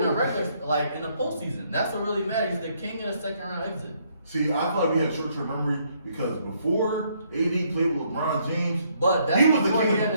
regular, like in the postseason. That's what really matters. He's the king of the second round exit. See, I feel like we had short-term memory because before AD played with LeBron James, but that's he was the before king he of had the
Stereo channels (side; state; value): both; inverted; correlation -0.70